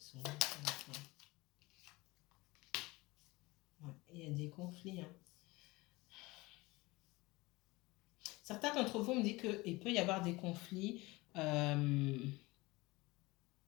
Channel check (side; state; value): right; quieter; 22.1 dB